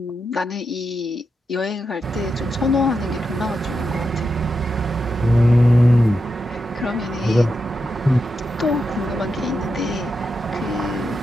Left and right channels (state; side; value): normal; both; correlation 0.87